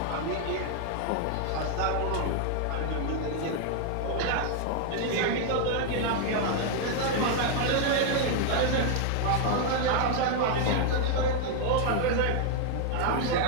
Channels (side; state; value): both; different; correlation 0.00